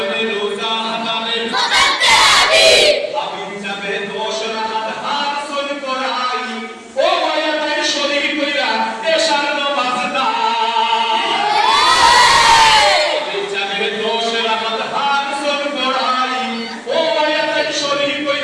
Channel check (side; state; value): both; identical; correlation 1.00